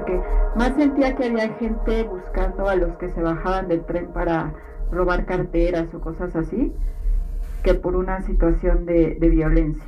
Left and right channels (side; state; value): both; identical; correlation 1.00